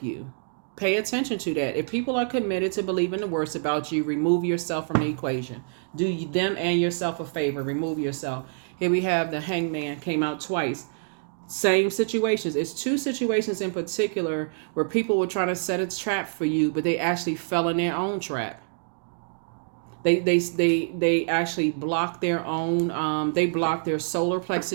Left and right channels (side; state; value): left; silent; digital silence